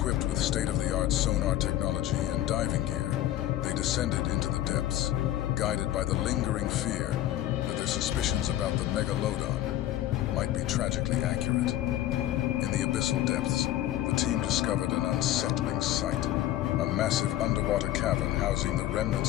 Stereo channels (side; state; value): right; quieter; 13.4 dB